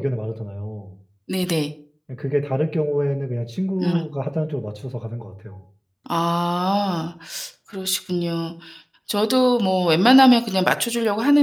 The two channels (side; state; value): both; identical; correlation 1.00